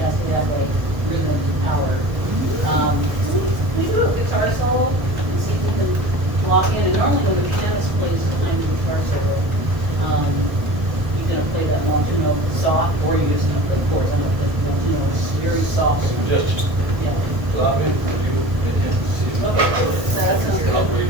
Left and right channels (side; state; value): left; late; 1.3 ms